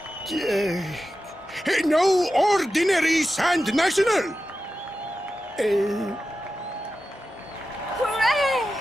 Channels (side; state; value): both; normal; correlation 0.92